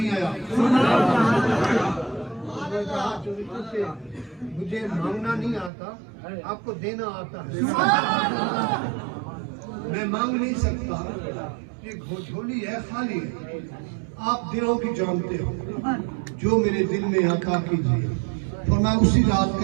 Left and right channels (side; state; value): left; drops out; at 5.7 s